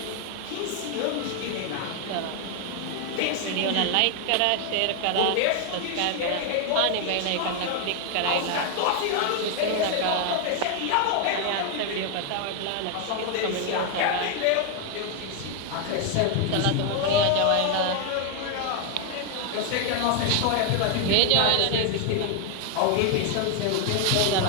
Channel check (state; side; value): different; both; correlation 0.00